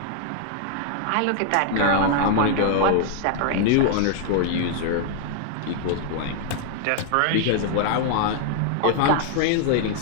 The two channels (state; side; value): different; both; correlation 0.00